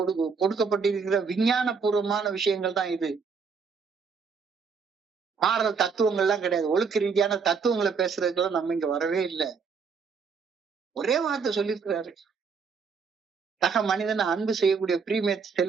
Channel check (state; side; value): quieter; left; 5.5 dB